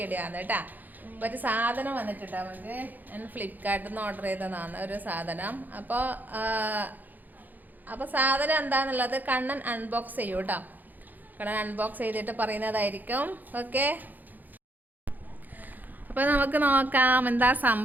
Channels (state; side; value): late; left; 0.084 ms